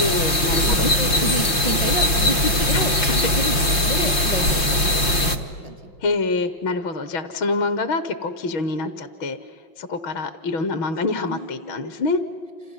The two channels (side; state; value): right; late; 5.7 ms